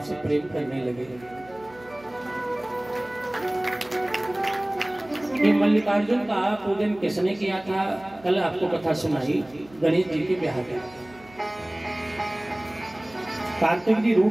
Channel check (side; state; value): right; noise; hum, 24 dB below the sound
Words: से प्रेम करने लगेगा। ये मल्लिकार्जुन का पूजन किसने किया था? कल आपको कथा सुनाई गणेश जी के ब्याह का। कार्तिक जी